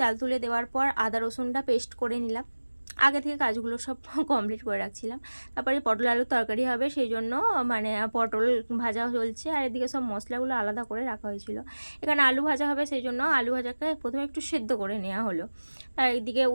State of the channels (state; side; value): inverted; both; correlation -1.00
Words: তুলে দেওয়ার পর আদা রসুনটা পেস্ট করে নিলাম। আগে থেকে কাজগুলো সব কমপ্লিট করে রাখছিলাম। তারপরে পটল আলুর তরকারি হবে, সেই জন্য পটল ভাজা চলছে, আর এদিকে সব মশলাগুলো আলাদা করে রাখা হয়েছিল। এখানে আলু ভাজা হবে, সেই জন্য আলু ভাজাকে প্রথমে একটু সেদ্ধ করে নেওয়া হলো। আর এইদিকে